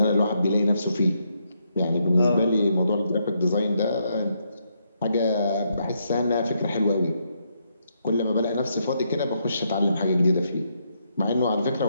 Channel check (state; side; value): inverted; both; correlation -0.77